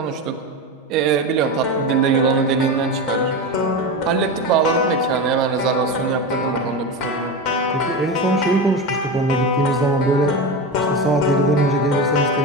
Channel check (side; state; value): both; normal; correlation 0.21